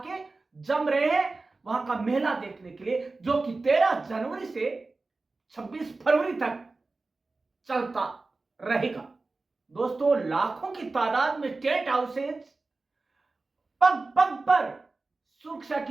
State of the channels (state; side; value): quieter; left; 3.6 dB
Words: जम रहे हैं वहां का मेला देखने के लिए, जो कि 13 जनवरी से 26 फरवरी तक चलता रहेगा। दोस्तों, लाखों की तादाद में टेंट हाउसेज, पग पग पर सुरक्षा